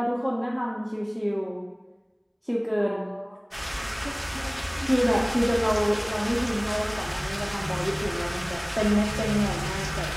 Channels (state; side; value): identical; both; correlation 1.00